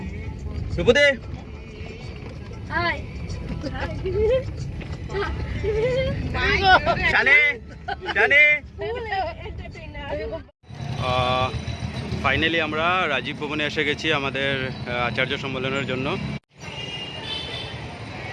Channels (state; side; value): identical; both; correlation 1.00